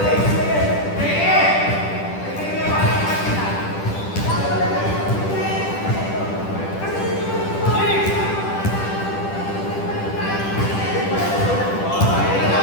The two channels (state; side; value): late; right; 10 ms